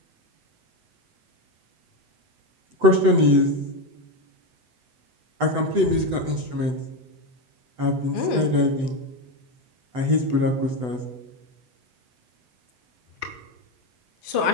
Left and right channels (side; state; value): left; late; 8.0 ms